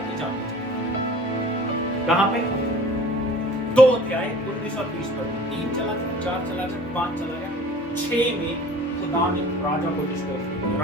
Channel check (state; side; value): normal; both; correlation 0.46